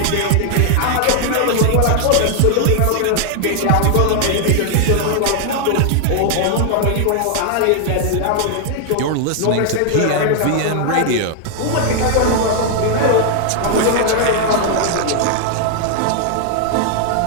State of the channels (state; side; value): different; both; correlation 0.00